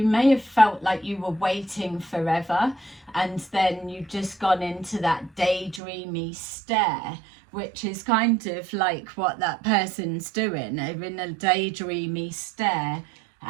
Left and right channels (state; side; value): drops out; left; at 5.8 s